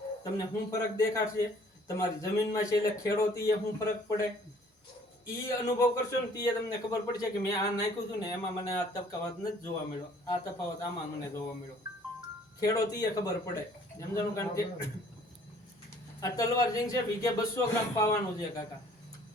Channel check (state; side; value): normal; both; correlation 0.57